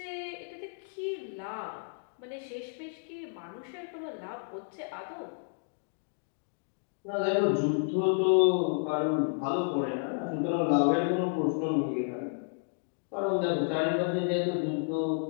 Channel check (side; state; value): right; silent; digital silence